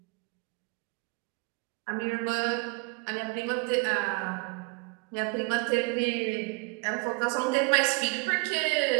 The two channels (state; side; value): quieter; left; 30.2 dB